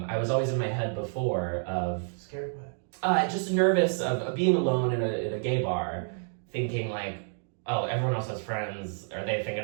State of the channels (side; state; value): left; silent; 57 dB below the other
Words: was always in my head before of scared what? Just nervous of being alone in a gay bar, thinking like, oh, everyone else has friends. Are they thinking